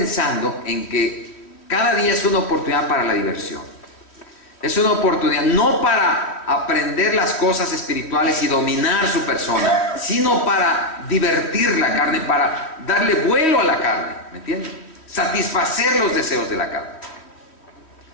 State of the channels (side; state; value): right; late; 3.1 ms